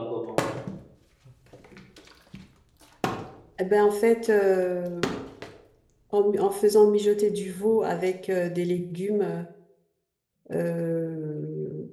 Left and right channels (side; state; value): both; identical; correlation 1.00